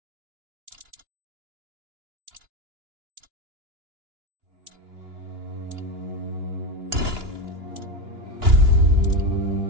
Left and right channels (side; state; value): left; late; 2.9 ms